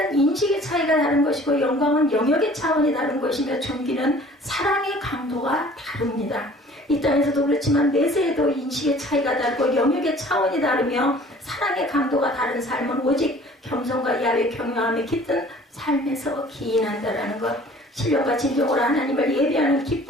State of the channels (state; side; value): normal; both; correlation 0.50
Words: 인식의 차이가 다른 것이고 영광은 영역의 차원이 다른 것이며 존귀는 사랑의 강도가 다릅니다. 이 땅에서도 그렇지만 내세에도 인식의 차이가 다르고 영역의 차원이 다르며 사랑의 강도가 다른 삶은 오직 겸손과 야외 경외함에 깃든 삶에서 기인한다라는 것. 신령과 진정으로 하나님을 예배하는